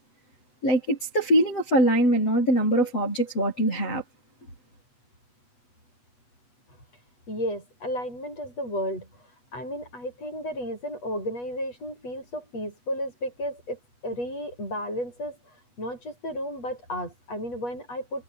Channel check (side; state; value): right; late; 8.1 ms